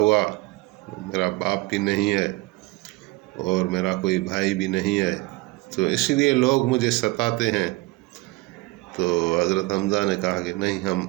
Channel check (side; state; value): left; quieter; 22.2 dB